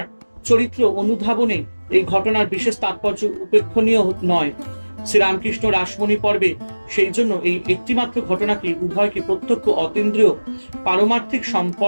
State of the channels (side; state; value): both; inverted; correlation -1.00